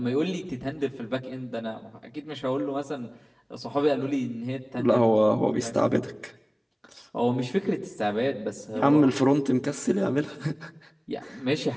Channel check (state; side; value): identical; both; correlation 1.00